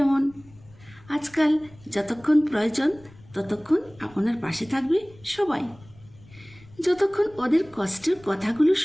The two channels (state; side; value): noise; left; rumble, 24 dB below the sound